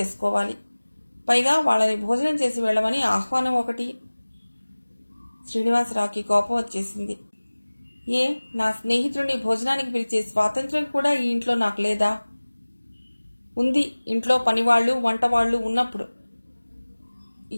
పైగా వాళ్ళని భోజనం చేసి వెళ్ళమని ఆహ్వానం ఒకటి. శ్రీనివాసరావుకి కోపం వచ్చేసింది. నా స్నేహితుడిని భోజనానికి పిలిచే స్వాతంత్ర్యం కూడా ఈ ఇంట్లో నాకు లేదా? ఉంది, ఇంట్లో పనివాళ్లు వంటవాళ్లు ఉన్నప్పుడు.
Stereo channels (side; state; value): both; inverted; correlation -1.00